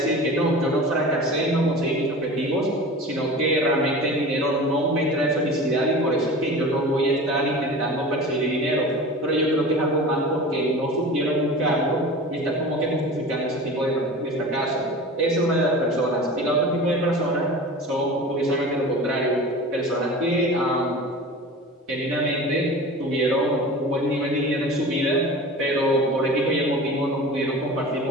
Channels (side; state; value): both; normal; correlation 0.35